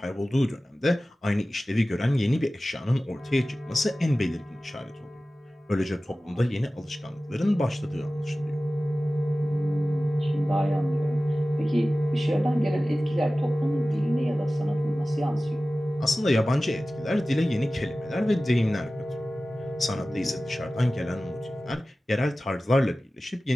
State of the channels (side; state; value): both; normal; correlation 0.96